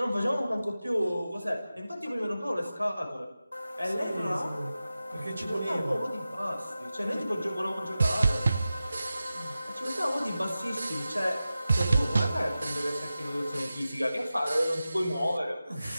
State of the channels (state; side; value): inverted; both; correlation -0.94